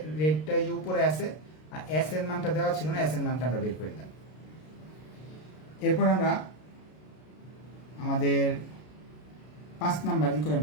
রেটটা উপরে আছে আর এস এর মানটা দেওয়া ছিল না, এস এর মানটা আমরা বের করে দিলাম। এরপর আমরা আমাদের 5 number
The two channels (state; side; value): late; right; 33 ms